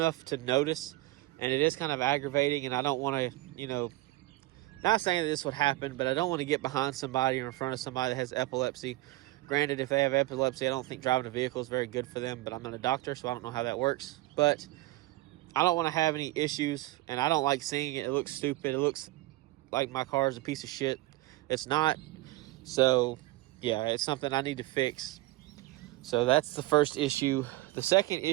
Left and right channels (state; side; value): quieter; left; 18.5 dB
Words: to notice, and it is kind of aggravating. And I don't want to, not saying that this would happen, but I don't want to get behind somebody or in front of somebody that has epilepsy. Granted, if they have epilepsy, I don't think driving a vehicle is very good for them, but I'm not a doctor, so I don't know how that works. But I don't want to have any issues, and I don't like seeing it. It looks stupid. It looks like my car is a piece of shit. It's not. So yeah, it's something I need to fix. So that's the first issue. The second